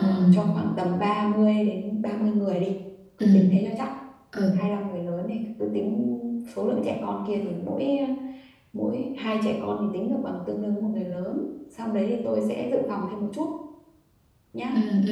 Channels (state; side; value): identical; both; correlation 1.00